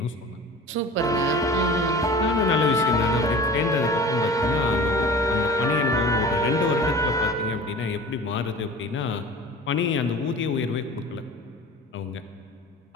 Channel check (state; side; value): normal; both; correlation 0.39